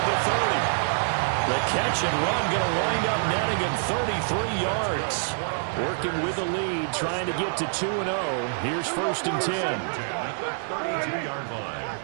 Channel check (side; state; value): left; silent; 59 dB below the other